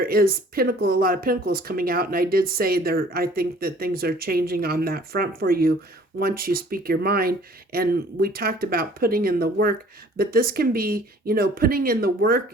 is a lot of Pentacles coming out, and I did say there, I think that things are changing on that front for you once you speak your mind. And we talked about putting in the work, but this can be, you know, putting in the work,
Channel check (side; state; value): both; normal; correlation 0.53